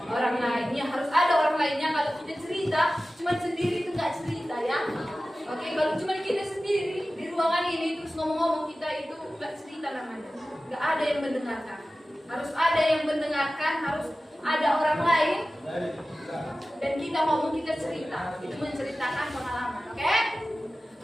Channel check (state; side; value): normal; both; correlation 0.96